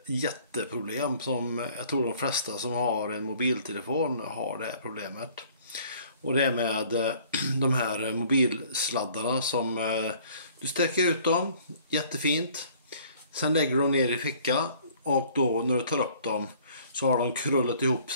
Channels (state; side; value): inverted; both; correlation -0.55